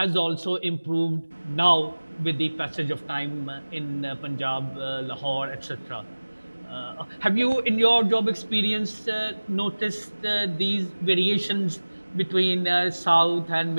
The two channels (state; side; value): inverted; both; correlation -1.00